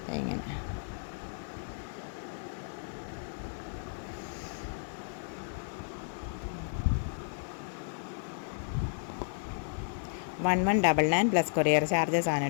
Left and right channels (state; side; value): silent; right; 56 dB below the other